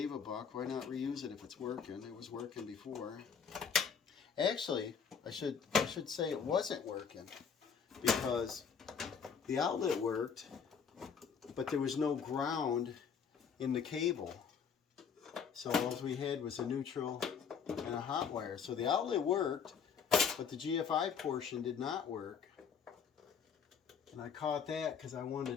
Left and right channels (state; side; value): quieter; right; 6.7 dB